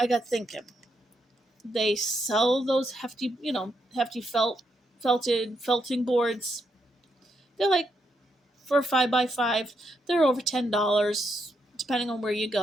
got thinking. They sell those hefty felting boards. They're like, for a 5x5, they're over $10, depending on where you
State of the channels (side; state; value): both; normal; correlation 0.79